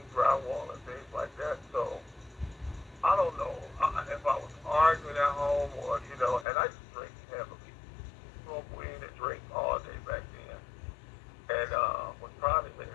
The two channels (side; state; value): right; drops out; at 6.5 s